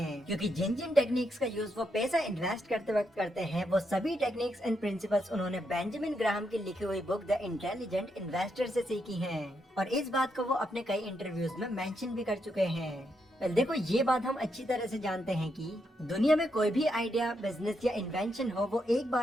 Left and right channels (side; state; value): both; normal; correlation 0.80